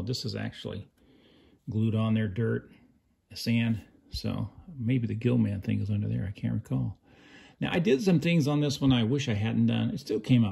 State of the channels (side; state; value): both; identical; correlation 1.00